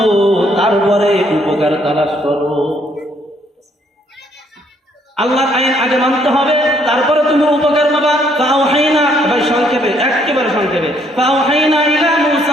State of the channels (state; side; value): normal; both; correlation 0.67